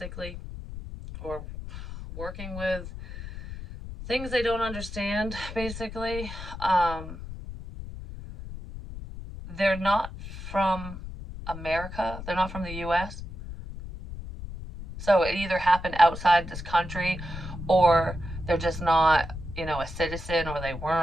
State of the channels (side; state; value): left; noise; rumble, 10 dB below the sound